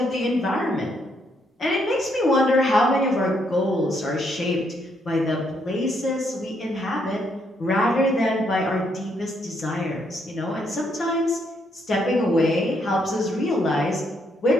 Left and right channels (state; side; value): normal; both; correlation 0.74